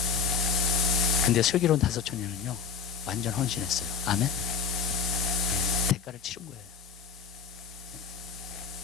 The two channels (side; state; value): right; quieter; 5.9 dB